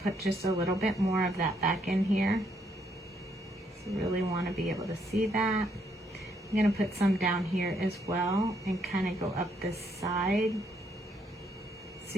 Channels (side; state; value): both; normal; correlation 0.73